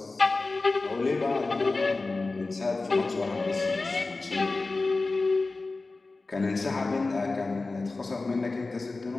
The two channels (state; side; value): quieter; right; 3.5 dB